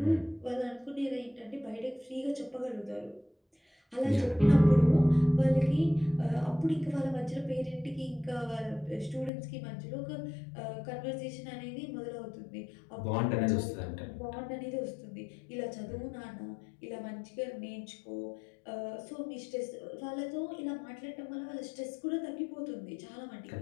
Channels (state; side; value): drops out; right; at 9.3 s